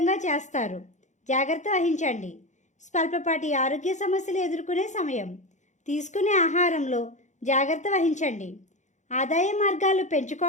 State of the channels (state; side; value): late; right; 0.35 ms